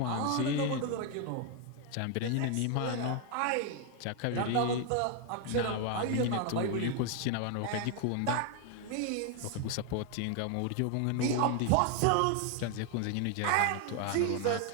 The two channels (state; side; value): different; both; correlation 0.01